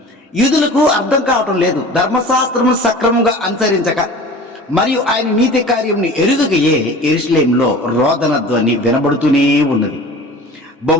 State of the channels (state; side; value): normal; both; correlation 0.40